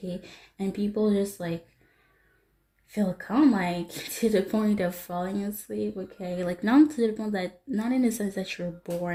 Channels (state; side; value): identical; both; correlation 1.00